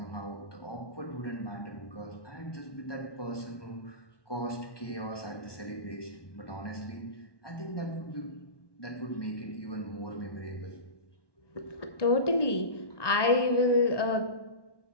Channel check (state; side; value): late; right; 1.2 ms